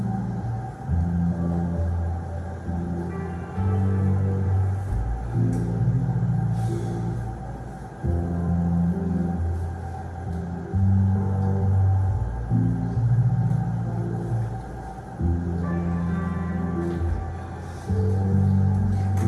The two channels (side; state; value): both; identical; correlation 1.00